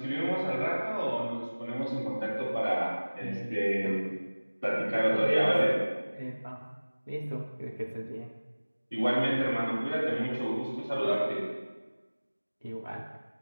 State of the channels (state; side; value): inverted; both; correlation -1.00